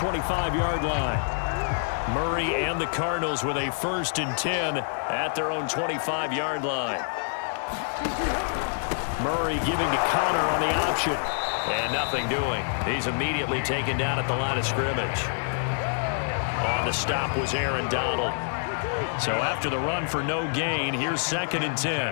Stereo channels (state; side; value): silent; right; digital silence